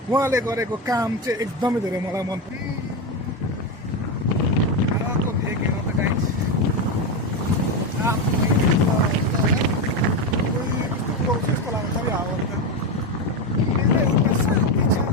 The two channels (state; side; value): normal; both; correlation 0.13